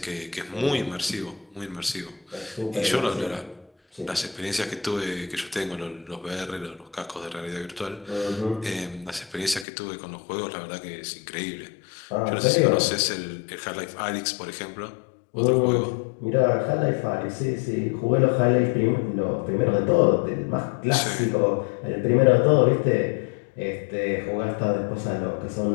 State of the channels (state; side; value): drops out; right; at 9.7 s